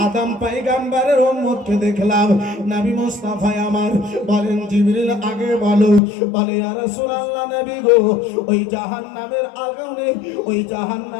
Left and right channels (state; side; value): drops out; right; at 6.0 s